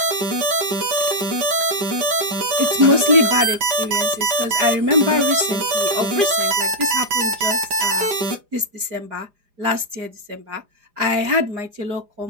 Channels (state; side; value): late; left; 4.9 ms